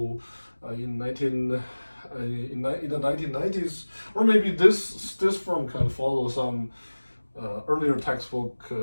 in the 1990s, or maybe this firm can follow some earlier textbook,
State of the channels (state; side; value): inverted; both; correlation -1.00